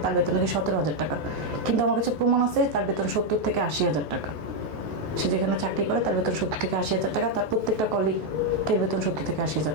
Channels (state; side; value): late; left; 14 ms